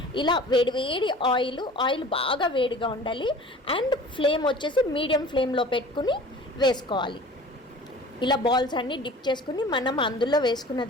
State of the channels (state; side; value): normal; both; correlation 0.43